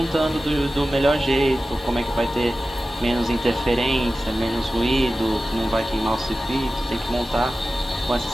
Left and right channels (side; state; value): both; normal; correlation 0.94